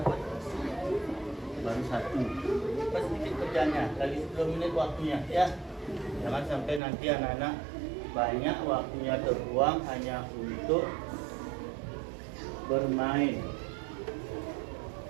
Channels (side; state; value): left; drops out; at 6.8 s